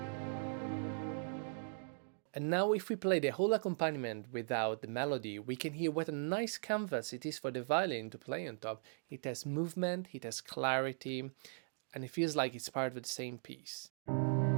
And now if we play the whole accompaniment without the melody, we can hear what a nice canvas it is for the violin to play on top. It has movement, it has clarity, and it feels like it's part of the same piece.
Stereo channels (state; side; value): silent; left; digital silence